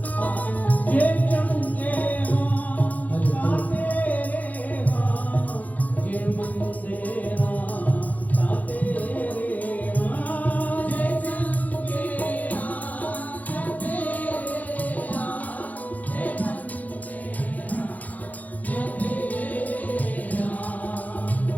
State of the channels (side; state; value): right; late; 0.078 ms